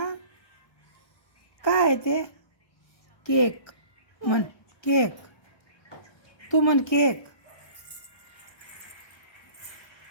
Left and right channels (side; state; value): right; late; 1.2 ms